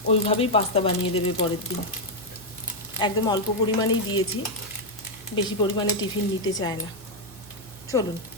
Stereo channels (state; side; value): normal; both; correlation 0.01